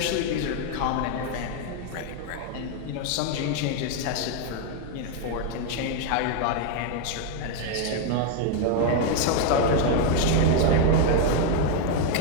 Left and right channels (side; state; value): both; different; correlation 0.00